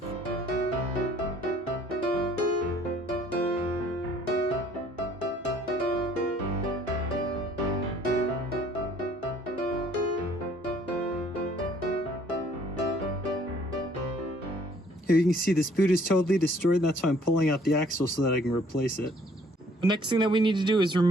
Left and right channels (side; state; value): both; normal; correlation 0.59